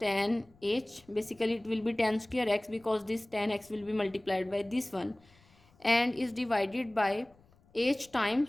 h. Basically it will be tan square x because this tan x will be multiplied by this one, and is divided by h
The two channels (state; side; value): noise; left; rumble, 30 dB below the sound